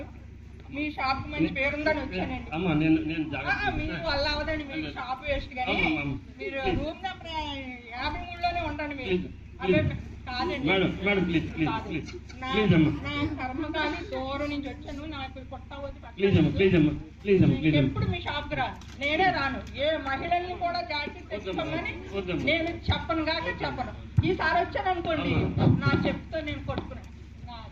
మీ షాప్ మంచి పేరుందని వచ్చానండి. అమ్మా నేను మీ వల్ల అవదండి, మీ షాప్ వేస్ట్ కానీ మీరు రూమ్ నెంబర్ 53లోనే ఉండండి. మీరు అదే కాదండి మేడం ప్లీజ్ నా కర్మకాలి దూరం నుంచి వచ్చాను, నాకు ఎప్పుడు మీ షాప్ కి రాను, నేనే రాను. ఏ మహిళల్ని కూడా జాకెట్ తెచ్చుకోమని నేను చెప్పను కాక చెప్పను. ఈసారి వచ్చాను అనుకోండి, నా చెప్తే నేను కొట్టుకున్నాను.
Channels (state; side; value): identical; both; correlation 1.00